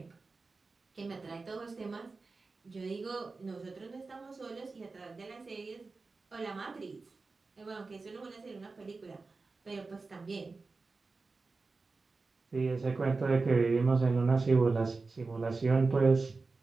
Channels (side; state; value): left; quieter; 3.9 dB